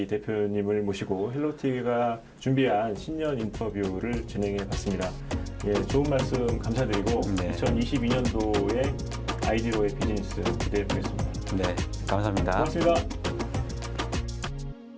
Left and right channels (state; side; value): identical; both; correlation 1.00